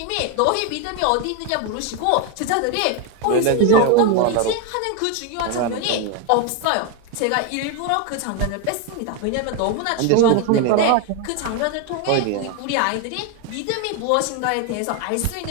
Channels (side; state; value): both; different; correlation 0.01